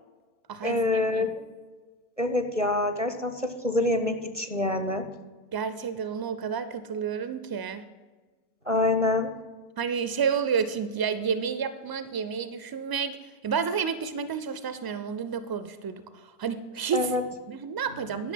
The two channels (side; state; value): left; late; 1.0 ms